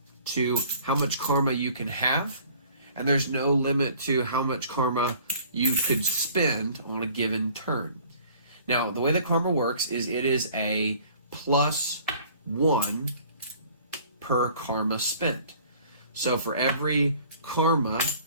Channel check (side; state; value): both; inverted; correlation -0.53